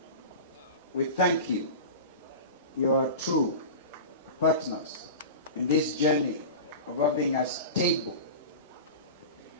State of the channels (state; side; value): inverted; both; correlation -0.30